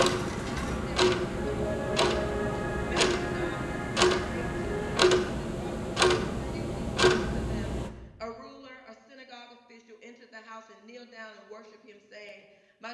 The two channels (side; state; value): both; identical; correlation 1.00